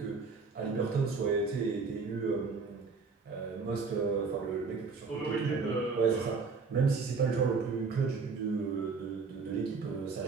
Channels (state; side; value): quieter; left; 4.7 dB